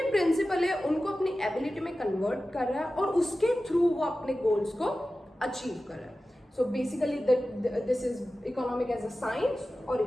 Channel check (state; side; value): normal; both; correlation 0.95